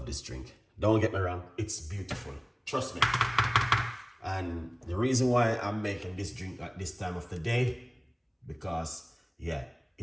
this drink. Don't get me wrong, it's beautiful. Trust me. And the reason why I'm making this drink at this time of the day, because yeah,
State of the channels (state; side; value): identical; both; correlation 1.00